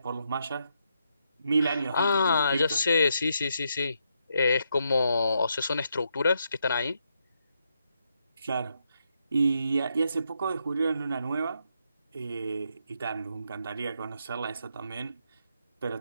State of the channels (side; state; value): both; inverted; correlation -0.79